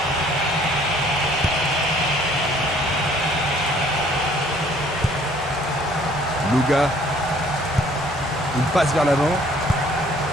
Luga. Une passe vers l'avant.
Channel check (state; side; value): normal; both; correlation 0.58